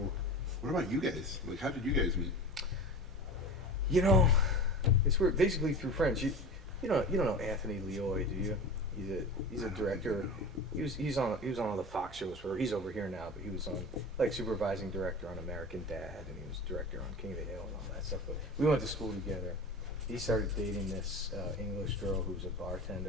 What about you guys? Like, how did you guys meet? It's weird. Basically through friends. You don't know Anthony Leoy, do you? He's a director. He was on all the Fox shows. He's over here now, but he was on supervising director on American Dad, and he was director on King of the Hill and all that stuff. But we went to school together. He started dating this English girl who's a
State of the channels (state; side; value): normal; both; correlation 0.33